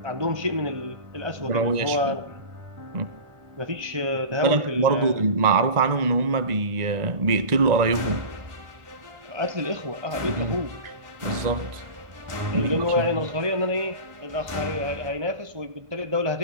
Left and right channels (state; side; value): late; left; 1.4 ms